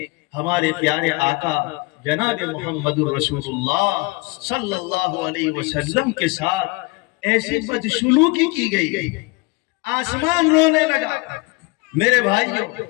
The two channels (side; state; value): right; quieter; 25.6 dB